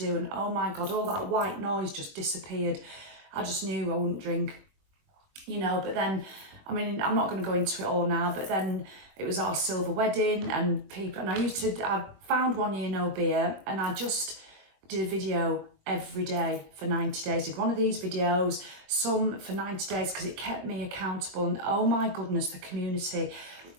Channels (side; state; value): left; late; 22 ms